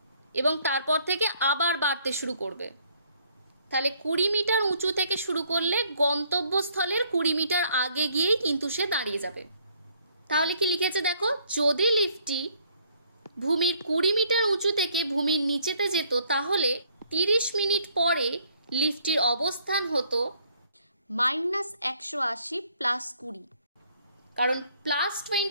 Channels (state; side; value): inverted; both; correlation -0.65